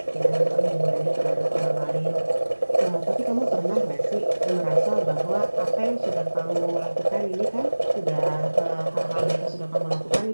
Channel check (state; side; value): inverted; both; correlation -1.00